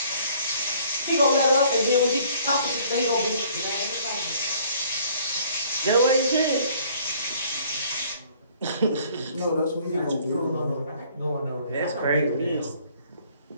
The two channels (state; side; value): inverted; both; correlation -0.58